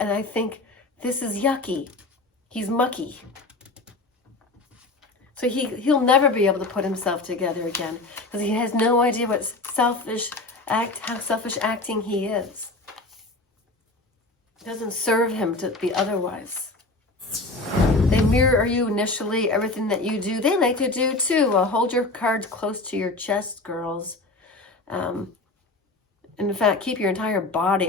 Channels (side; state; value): right; quieter; 3.1 dB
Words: think, this is yucky. He's mucky. So he'll never be able to put himself together again because he has no idea what how selfish acting he is. It doesn't serve him to be otherwise. They mirror you initially, everything that you do. They like to do too. Hold your cards close to your chest, girls. In fact, keep your entire